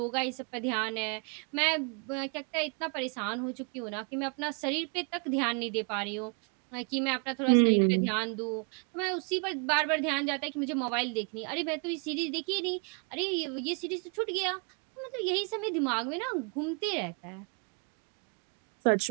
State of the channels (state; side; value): quieter; left; 37.5 dB